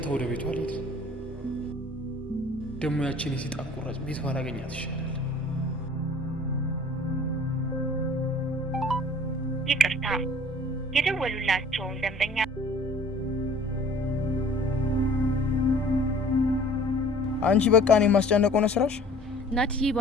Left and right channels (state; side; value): normal; both; correlation 0.50